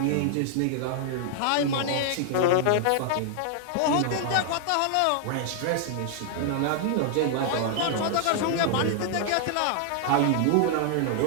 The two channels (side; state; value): both; different; correlation 0.00